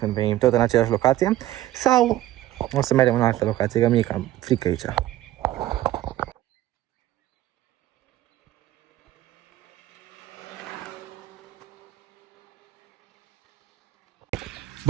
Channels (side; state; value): left; quieter; 14.6 dB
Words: venim tot în aceeași locație. Sau o să mergem în altă locație, că mie cam frică aici.